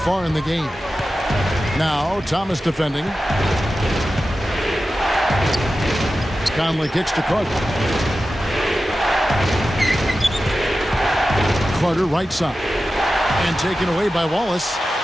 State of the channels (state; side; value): normal; both; correlation 0.93